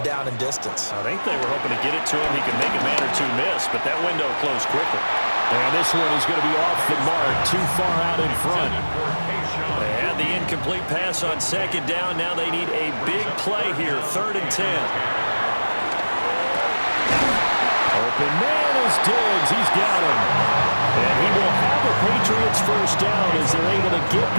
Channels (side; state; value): both; inverted; correlation -1.00